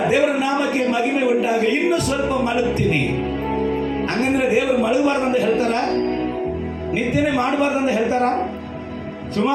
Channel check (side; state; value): both; identical; correlation 1.00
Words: ದೇವರ ನಾಮಕ್ಕೆ ಮಹಿಮೆ ಉಂಟಾಗ. ಇನ್ನು ಸ್ವಲ್ಪ ಮಲಗ್ತೀನಿ ಹಂಗಂದ್ರೆ ದೇವರು ಮಲಗಬಾರ್ದಂತ ಹೇಳ್ತಾರ? ನಿದ್ದೆನೆ ಮಾಡಬಾರ್ದಂತ ಹೇಳ್ತಾರ?